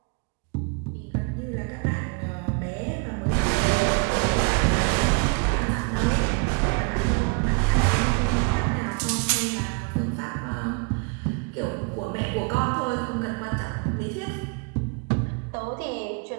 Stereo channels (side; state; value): left; quieter; 33.0 dB